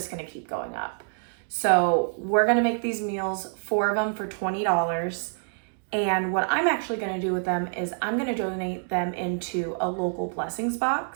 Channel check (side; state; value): left; silent; 60 dB below the other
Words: gonna keep going up. So we're gonna make these meals, 4 of them for $20. And what I'm actually gonna do with them is I'm gonna donate them into a local blessings